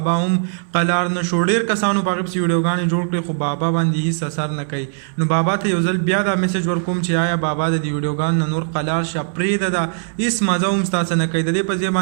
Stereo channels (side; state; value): left; silent; 61 dB below the other